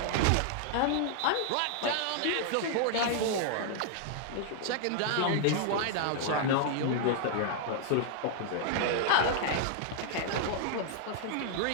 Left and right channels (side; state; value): both; different; correlation 0.00